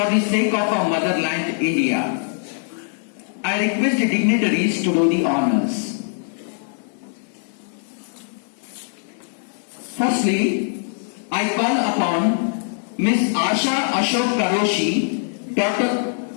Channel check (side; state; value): right; silent; digital silence